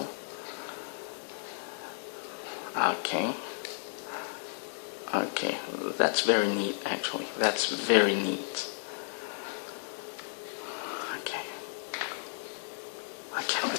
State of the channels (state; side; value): silent; right; digital silence